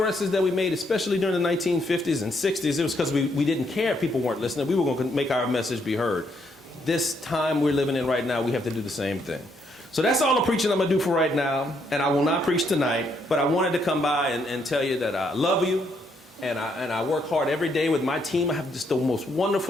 that we made, especially during the 1950s and 60s, it was because we didn't care if people weren't listening. We were going to make our message be heard. This time we're living in right now, we have to do the same thing. So that's all the preaching I'm going to do for right now, and I will not preach tonight, but I wanted to come by and tell you that I love you, and I work hard every day with my team. I have just the most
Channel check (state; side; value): normal; both; correlation 0.74